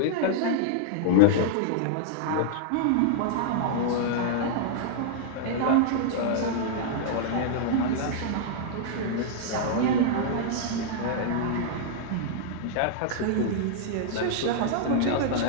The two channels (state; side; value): different; both; correlation -0.01